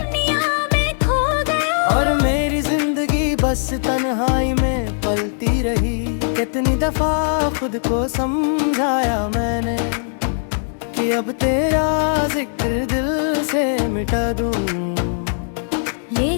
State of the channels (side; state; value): right; silent; digital silence